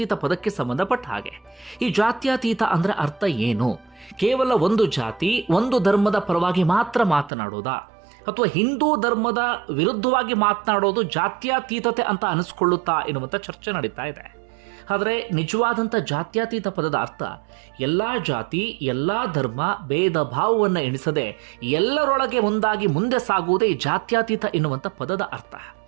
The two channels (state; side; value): drops out; left; at 7.3 s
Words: ಪದಕ್ಕೆ ಸಂಬಂಧಪಟ್ಟ ಹಾಗೆ. ಈ ಜಾತ್ಯತೀತ ಅಂದ್ರೆ ಅರ್ಥ ಏನು? ಕೇವಲ ಒಂದು ಜಾತಿ ಒಂದು ಧರ್ಮದ ಪರವಾಗಿ ಮಾತ್ರ ಮಾತನಾಡೋದಾ, ಅಥವಾ ಹಿಂದೂ ಧರ್ಮದ ವಿರುದ್ಧವಾಗಿ ಮಾತನಾಡೋದು ಜಾತ್ಯತೀತತೆ ಅಂತ ಅನಿಸ್ಕೊಳ್ಳುತ್ತಾ ಎನ್ನುವಂಥ ಚರ್ಚೆ ನಡೀತಾ ಇದೆ. ಆದರೆ ನಿಜವಾದಂಥ ಜಾತ್ಯತೀತ ಪದದ ಅರ್ಥ ಎಲ್ಲ ಜಾತಿ ಎಲ್ಲ ಧರ್ಮ ಭೇದ ಭಾವವನ್ನು ಎಣಿಸದೆ ಎಲ್ಲರೊಳಗೆ ಒಂದಾಗಿ ಮುಂದೆ ಸಾಗುವುದೇ ಜಾತ್ಯತೀತ ಎನ್ನುವಂಥ ಪದದ ಅರ್ಥ.